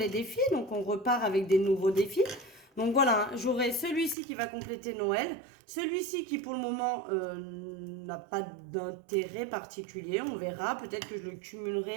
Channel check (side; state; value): left; drops out; at 4.2 s